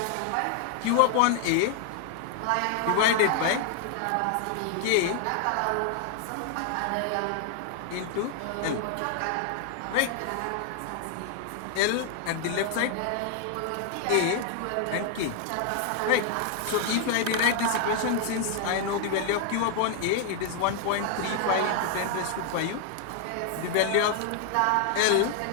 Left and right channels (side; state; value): both; different; correlation 0.00